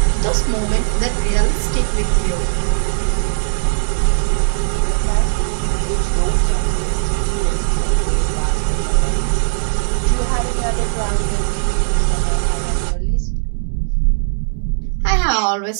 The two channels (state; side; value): silent; left; digital silence